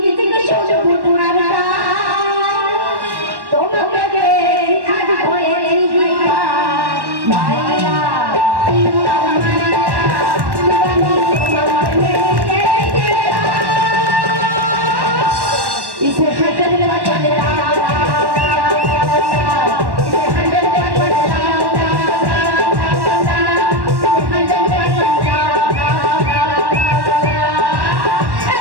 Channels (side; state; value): left; late; 1.1 ms